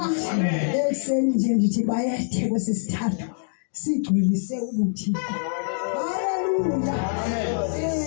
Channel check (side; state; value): right; silent; digital silence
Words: Ekseni nje ndithi bayethe kwesisithathu sigcwelise ubuthixo. Haleluya.